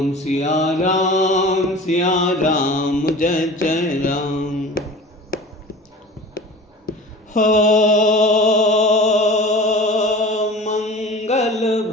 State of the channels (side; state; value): both; normal; correlation 0.39